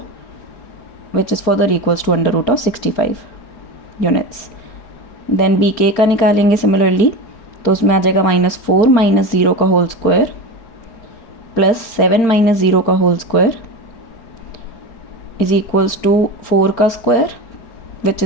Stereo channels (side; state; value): right; late; 4.4 ms